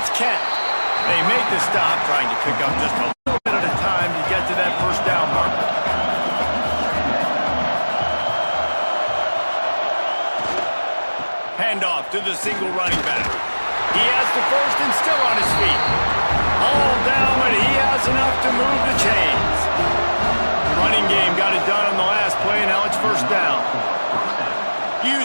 Kent. They make the stop, trying to pick up just a little bit at a time to get to that 1st down marker. Handoff to the single running back. He has the 1st and still on his feet. All down, but he has enough to move the chains. The running game got it done on the last play, and now it's 1st down.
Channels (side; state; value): both; inverted; correlation -1.00